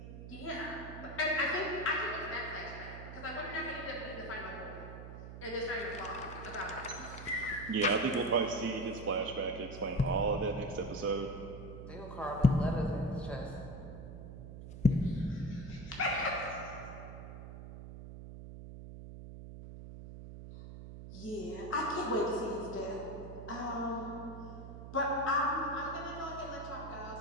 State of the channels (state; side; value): noise; right; hum, 11 dB below the sound